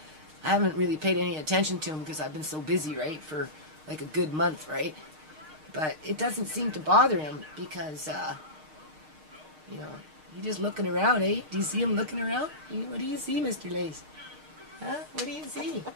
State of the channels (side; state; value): left; late; 6.5 ms